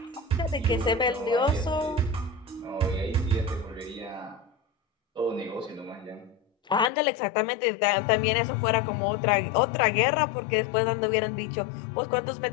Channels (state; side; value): drops out; right; at 6.9 s